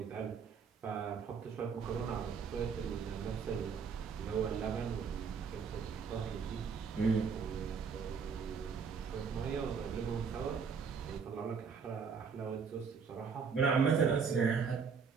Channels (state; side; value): quieter; left; 5.9 dB